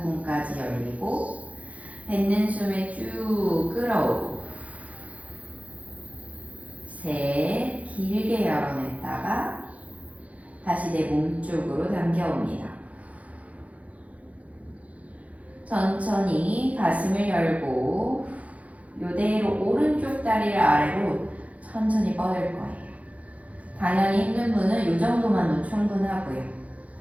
열리고 뱉는 숨에 쭉 끌어오고 셋, 길게 열어냈다가 다시 내 몸 쪽으로 당겨옵니다. 천천히 가슴을 열고 이대로 오른쪽 다리를 아래로 천천히 뻗을 거예요. 당연히 힘든 분은 이 정도만도 충분하고요.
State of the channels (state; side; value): late; left; 0.067 ms